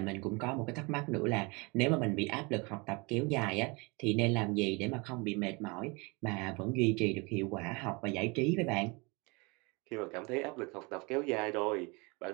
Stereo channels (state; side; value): quieter; left; 28.1 dB